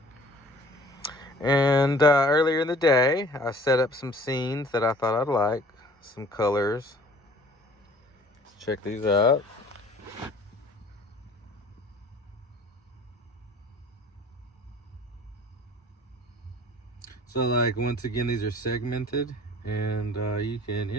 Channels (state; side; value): normal; both; correlation 0.50